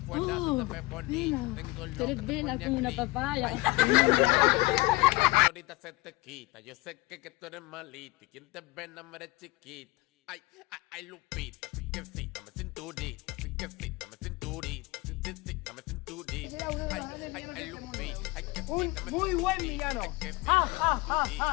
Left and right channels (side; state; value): right; quieter; 22.1 dB